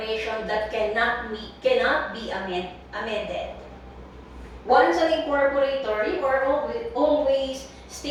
that cannot be amended. Once an incorporator, you are always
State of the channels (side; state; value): both; identical; correlation 1.00